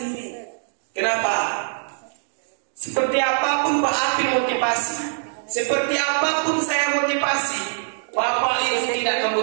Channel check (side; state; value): left; silent; digital silence